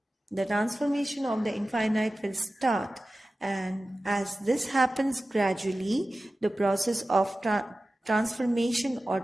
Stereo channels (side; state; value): both; normal; correlation 0.95